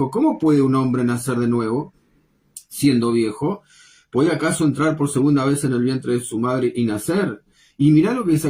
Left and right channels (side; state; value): both; identical; correlation 1.00